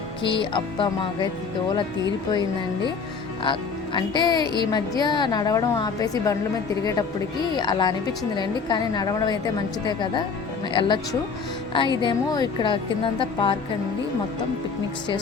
అబ్బా మాకైతే దోల తీరిపోయిందండి. అంటే ఈ మధ్య నడవడం ఆపేసి బండ్ల మీద తిరిగేటప్పటికి అలా అనిపించిందిలేండి. కానీ నడవడం అయితే మంచిదే కదా, వెళ్ళొచ్చు. ఇదేమో ఇక్కడ కిందంతా పార్క్ అండి. మొత్తం పిక్నిక్స్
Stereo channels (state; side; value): quieter; right; 5.2 dB